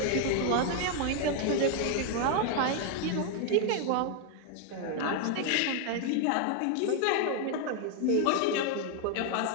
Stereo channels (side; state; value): both; different; correlation 0.00